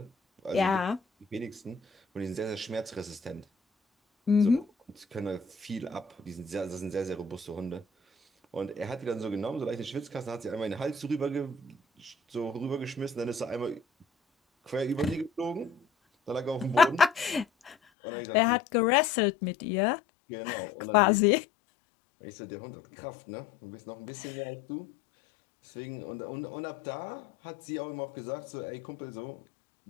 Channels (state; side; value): drops out; right; at 17.8 s